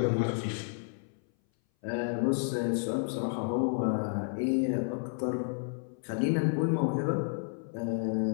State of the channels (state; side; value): silent; right; 57 dB below the other